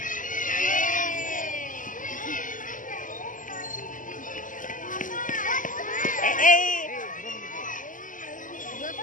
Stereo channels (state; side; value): late; right; 0.38 ms